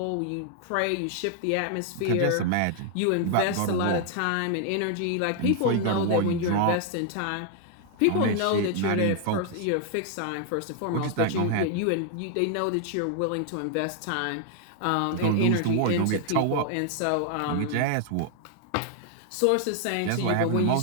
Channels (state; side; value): different; both; correlation 0.00